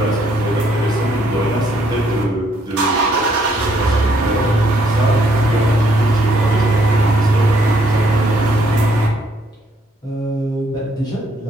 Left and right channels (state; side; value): normal; both; correlation 0.69